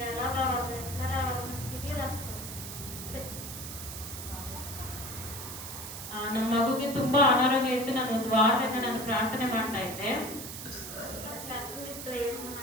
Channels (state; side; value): noise; right; hiss, 9 dB below the sound